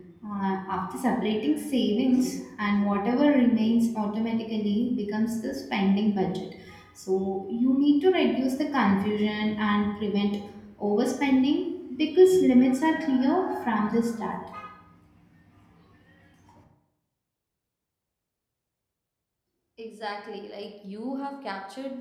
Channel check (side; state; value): both; identical; correlation 1.00